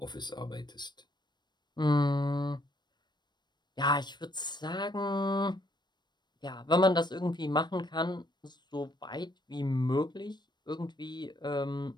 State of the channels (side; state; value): right; late; 0.21 ms